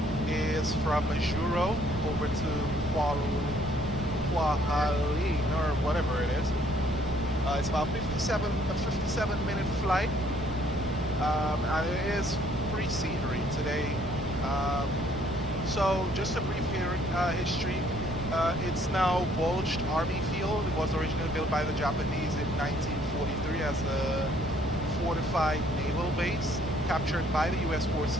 is from Juro over to Kuala or whatever it is. It's about a 57-minute flight, and it is free scenery today. So just a brief history. It's now Bulged Army Field. It was originally built by the Japanese in 1943 as a fortified naval base, captured by the U.S. forces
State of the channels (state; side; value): normal; both; correlation 0.63